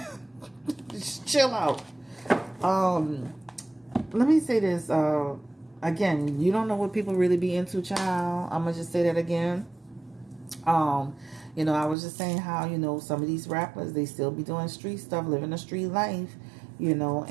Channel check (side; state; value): left; drops out; at 12.0 s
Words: Just chill out. Let me say this. Again, you don't know what people really be into, child. I'm gonna just say that again. I was just saying how, some of these rappers, they still be doing street stuff, living a street life,